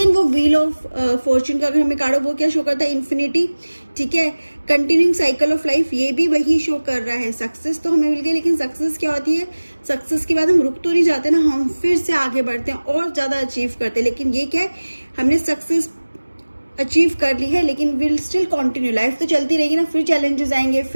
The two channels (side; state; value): both; inverted; correlation -1.00